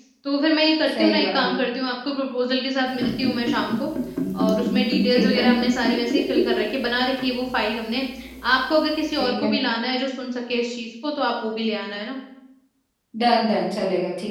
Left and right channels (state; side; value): identical; both; correlation 1.00